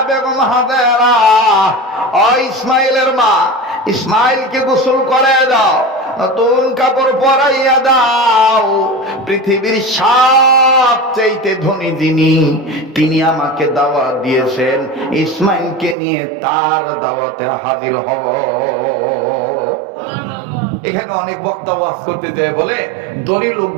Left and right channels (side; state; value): left; drops out; at 16.0 s